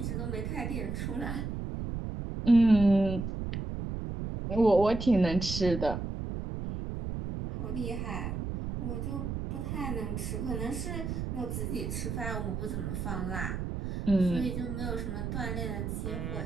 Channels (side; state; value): right; noise; rumble, 4 dB below the sound